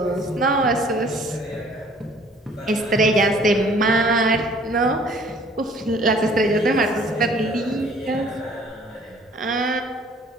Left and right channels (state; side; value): normal; both; correlation 0.55